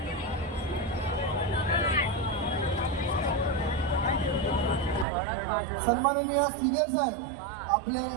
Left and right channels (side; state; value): left; drops out; at 5.1 s